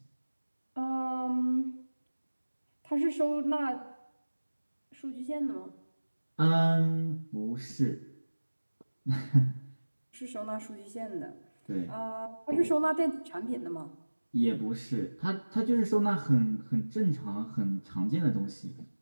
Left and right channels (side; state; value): both; inverted; correlation -1.00